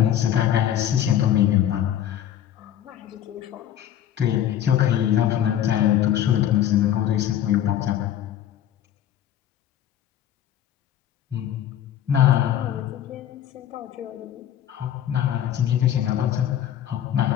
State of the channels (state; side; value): quieter; right; 10.9 dB